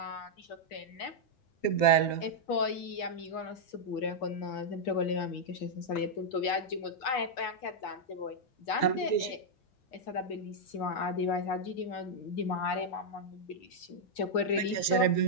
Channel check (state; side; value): late; right; 7.5 ms